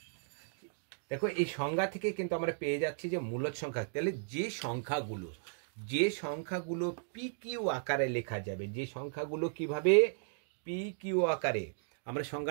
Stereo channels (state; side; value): silent; left; digital silence